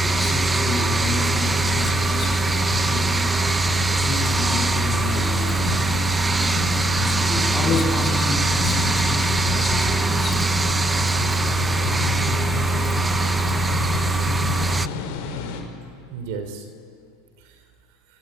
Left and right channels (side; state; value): both; normal; correlation 0.78